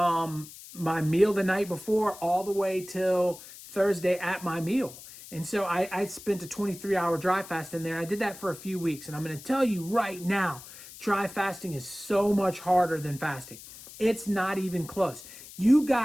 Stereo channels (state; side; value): noise; left; hiss, 16 dB below the sound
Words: my meal the night before all the way till Thursday at my meal. And so I spent a 23-hour dry fast in there. I did that for a few weeks. And I'm going to tell you right now, dry fasting is so much harder than fasting. It's not even close. You